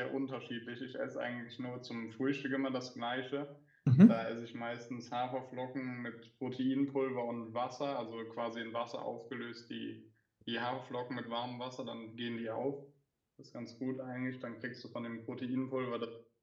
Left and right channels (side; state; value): both; identical; correlation 1.00